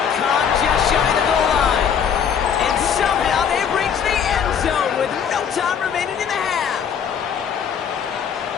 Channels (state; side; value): quieter; right; 7.7 dB